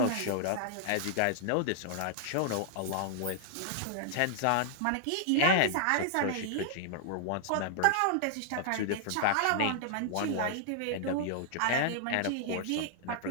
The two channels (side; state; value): both; different; correlation -0.01